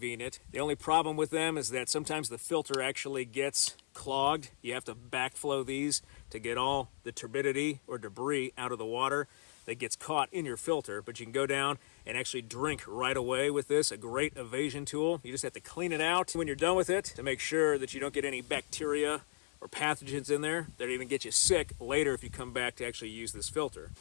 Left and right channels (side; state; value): right; silent; 54 dB below the other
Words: The only problem with them is that sometimes the filter actually gets clogged. You have to backflow these to get all the turbidity or debris out of the water that gets caught in your filter. But you can go down and actually drink right away with this. A great evasion tool. You just have to clean it out when you're done with it to make sure that you don't get any bacteria or pathogens in there that even get you sick later if you come back to actually use this filter.